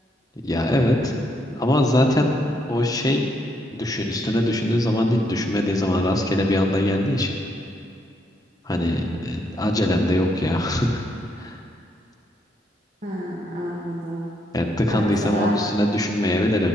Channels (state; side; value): normal; both; correlation 0.75